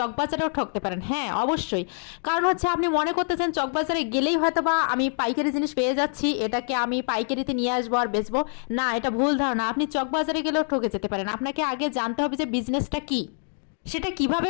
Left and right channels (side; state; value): right; silent; 59 dB below the other